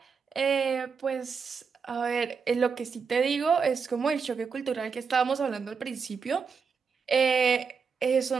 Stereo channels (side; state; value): left; quieter; 5.7 dB